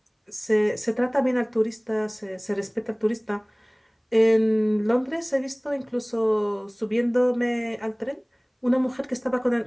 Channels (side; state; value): both; identical; correlation 1.00